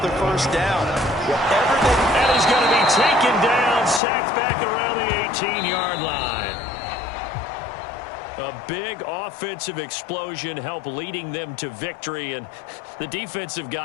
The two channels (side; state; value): right; drops out; at 4.0 s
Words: first down. And he's going to be taken down, sacked back around the 18-yard line. A big offensive explosion helped leading them to victory, and the defensive